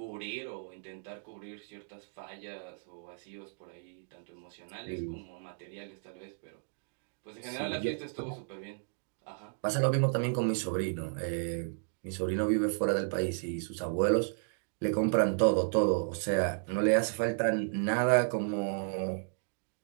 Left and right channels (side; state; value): left; silent; digital silence